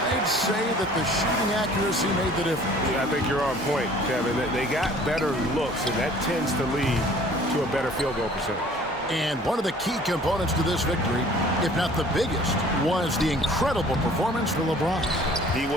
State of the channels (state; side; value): normal; both; correlation 0.51